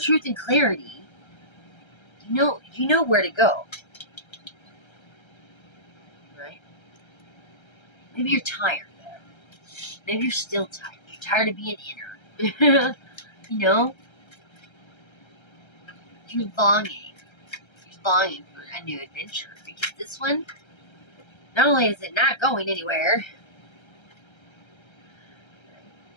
truth and clarity. You know where to go. Right? Maybe you're tired, though. Maybe you're still tired. You're tired of being inner. You know? You're longing for a new adventure, because this one, not only is it not going anywhere,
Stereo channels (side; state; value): right; late; 1.3 ms